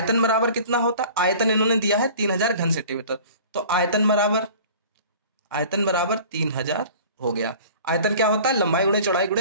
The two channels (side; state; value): both; inverted; correlation -0.44